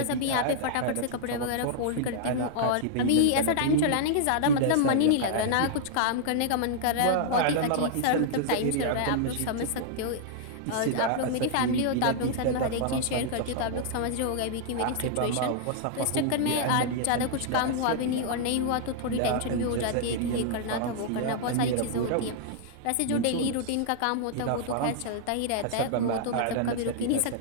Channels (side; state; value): both; different; correlation -0.01